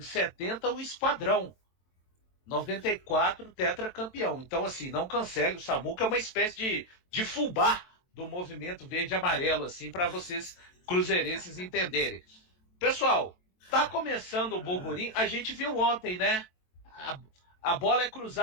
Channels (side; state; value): right; late; 22 ms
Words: 70 o Esquadrão, 94 tetracampeão. Então, assim, não cancele, o Samuca é uma espécie de fubá do movimento verde e amarelo, assim, para vocês cruzeirenses entenderem. Pessoal, tá começando o burburinho, a gente viu ontem, né? A bola é